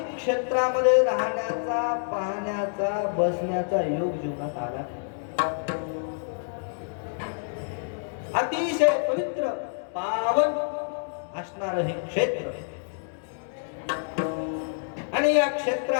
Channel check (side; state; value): right; silent; digital silence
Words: क्षेत्रामध्ये राहण्याचा, पाहण्याचा, बसण्याचा योग जीवनात आला. अतिशय पवित्र पावन असणार हे क्षेत्र आणि या